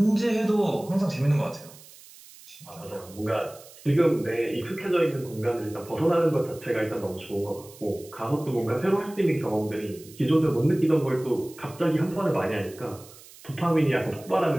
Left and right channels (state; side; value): noise; right; hiss, 21 dB below the sound